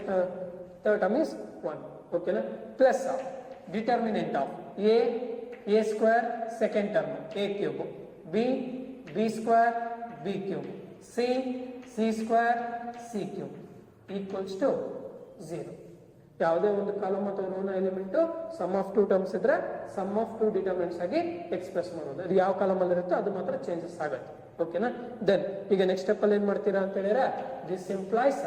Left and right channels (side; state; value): both; identical; correlation 1.00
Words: third term is 1. ಓಕೆನಾ, plus determinant of a square second term a cube, b square b cube, c square c cube equals to 0. ಯಾವುದೇ ಒಂದು column ಅಥವಾ ರೋನ element some of 2 terms ಇದ್ರೆ some of 2 determinants ಆಗಿ express ಮಾಡೋದು. ಅದು ಯಾವ ಕಾಲಮ್ ಅಲ್ಲಿ ಇರುತ್ತೋ ಅದು ಮಾತ್ರ ಚೇಂಜಸ್ ಆಗುತ್ತೆ. ಓಕೆನಾ, ದೆನ್ ಈಗ ನೆಕ್ಸ್ಟ್ ಸ್ಟೆಪ್ ಅಲ್ಲಿ ಏನ್ ಮಾಡ್ತೀರಾ ಅಂತ ಹೇಳಿದ್ರೆ, ದಿಸ್ ಇಂಪ್ಲೈಸ್